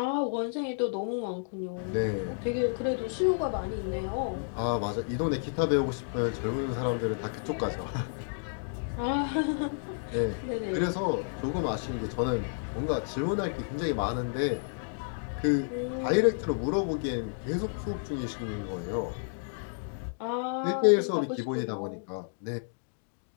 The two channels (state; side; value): silent; right; digital silence